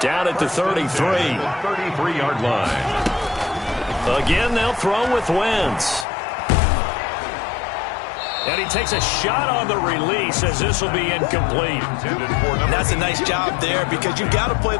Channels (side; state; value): right; drops out; at 6.1 s